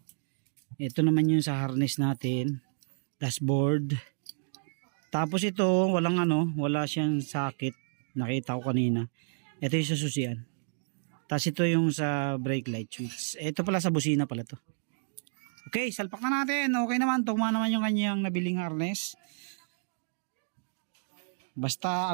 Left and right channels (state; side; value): silent; left; digital silence